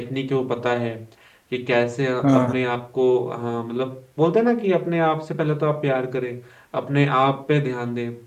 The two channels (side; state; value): both; identical; correlation 1.00